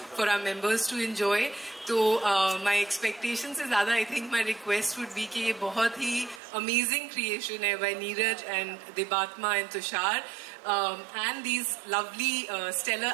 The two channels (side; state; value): left; drops out; at 6.4 s